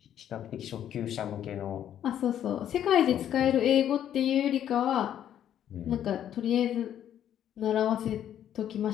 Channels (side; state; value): right; quieter; 10.4 dB